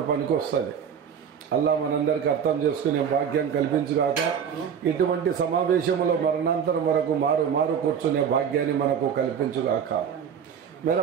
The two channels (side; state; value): left; quieter; 7.7 dB